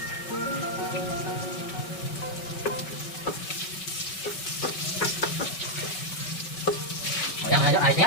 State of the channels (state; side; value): late; right; 5.3 ms